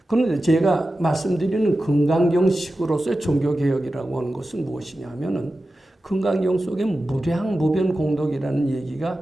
그런데 제가 말씀드리는 금강경식으로서의 종교개혁이라고 하는 것은 무엇이냐 하면은 금강경 속에 무량무변공덕이라는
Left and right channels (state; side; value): normal; both; correlation 0.93